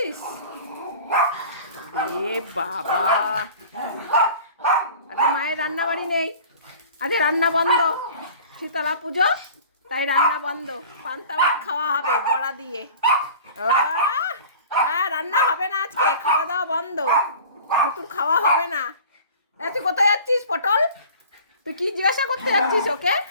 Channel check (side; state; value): both; inverted; correlation -0.43